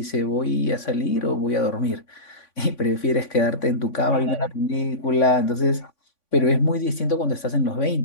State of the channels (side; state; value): right; late; 3.5 ms